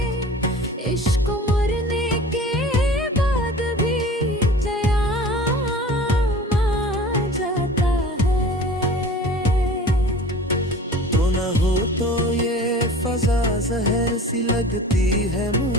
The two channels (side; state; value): both; normal; correlation 0.41